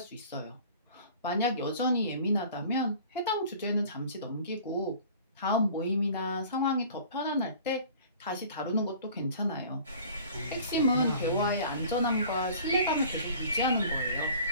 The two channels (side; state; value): both; inverted; correlation -0.47